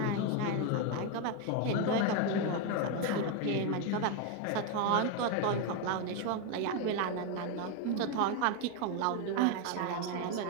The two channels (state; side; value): different; both; correlation 0.02